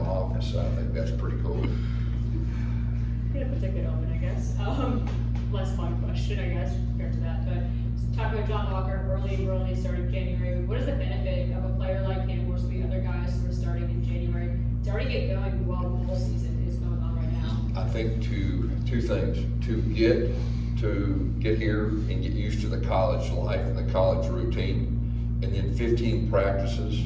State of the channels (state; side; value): identical; both; correlation 1.00